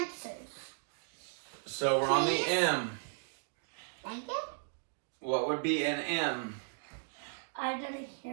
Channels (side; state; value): left; silent; digital silence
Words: So we're on the Please? M. Thank you. What would be an M? I didn't